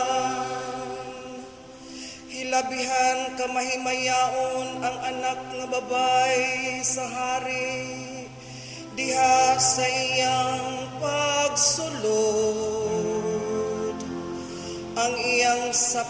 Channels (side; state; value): both; identical; correlation 1.00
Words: Hilabihan ka mahimayaon ang anak nga babay sa hari, diha sa iyang pagsulod. Ang iyang